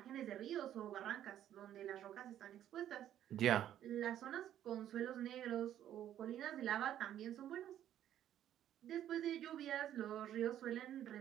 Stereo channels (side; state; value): left; quieter; 11.3 dB